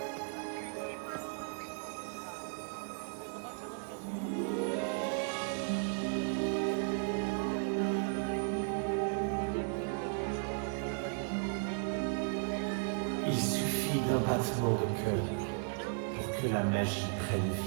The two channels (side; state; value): left; silent; 54 dB below the other